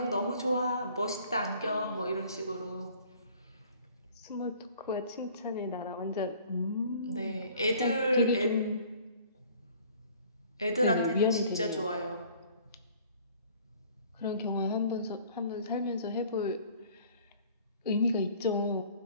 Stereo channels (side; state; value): both; inverted; correlation -0.53